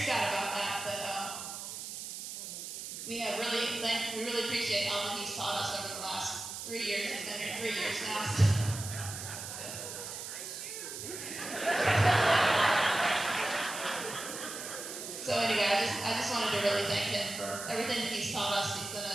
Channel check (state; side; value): noise; right; hiss, 8 dB below the sound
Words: about that, but we really appreciate all that he's taught us over the last 3 years. He's been here 3 years now. So anyway, I just wanted to really thank him for everything that he's taught us. He's been